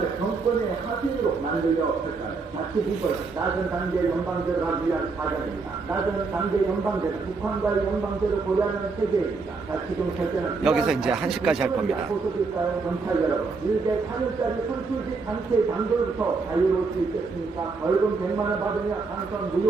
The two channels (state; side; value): quieter; left; 4.3 dB